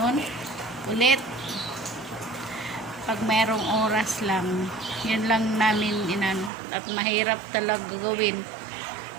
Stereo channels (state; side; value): drops out; left; at 6.5 s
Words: ulit pag mayroong oras lang. Yan lang namin inano at mahirap talaga gawin.